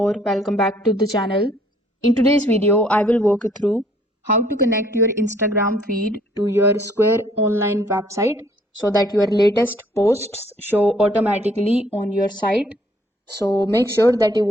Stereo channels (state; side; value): normal; both; correlation 0.62